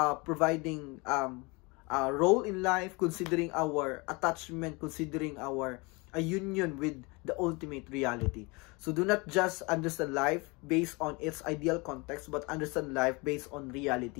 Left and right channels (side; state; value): right; quieter; 27.2 dB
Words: providing a role in life, considering our attachment, considering our a union with the ultimate reality. So do not just understand life based on its ideal context, but understand life based on